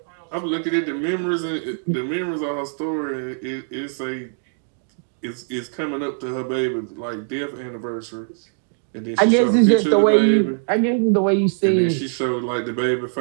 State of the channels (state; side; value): silent; left; digital silence